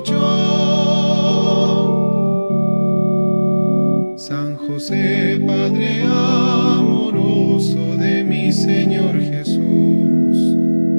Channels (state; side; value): inverted; both; correlation -1.00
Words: San José, Padre amoroso de mi Señor Jesús,